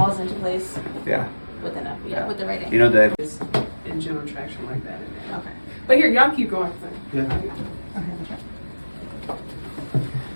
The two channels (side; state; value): both; inverted; correlation -1.00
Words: into place Yeah. with enough, with the right angle. You know that. In general traction like that. Okay. But here, y'all keep going. Yeah. Okay.